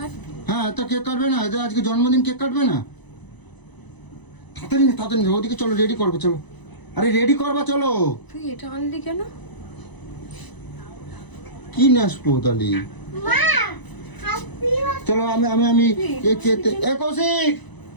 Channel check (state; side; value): late; right; 1.0 ms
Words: হ্যাঁ তা কেক কাটবে না, এদের আজকে জন্মদিন, কেক কাটবে না? তাড়াতাড়ি ওদিকে চলো, রেডি করবো চলো। আরে রেডি করবা চলো। তুই এটা আনলি কেন? কি নেসবো তাহলে, চলো আমি আমি আমি কৌশিক,